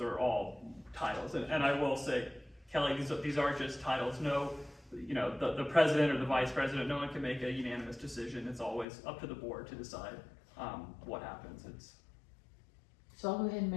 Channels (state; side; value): drops out; right; at 8.8 s